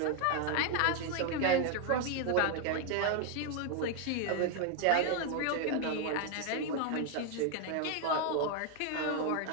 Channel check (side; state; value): both; different; correlation 0.00